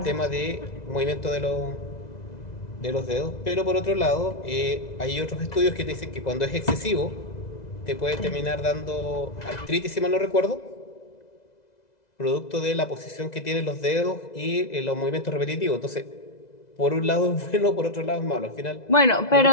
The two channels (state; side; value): late; right; 2.0 ms